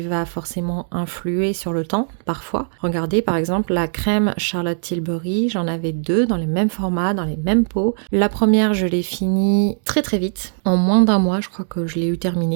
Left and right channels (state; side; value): silent; left; digital silence